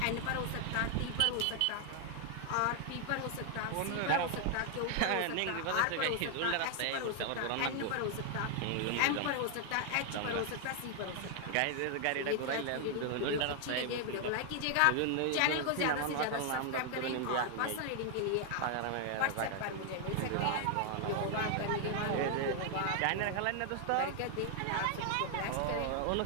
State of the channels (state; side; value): different; both; correlation 0.00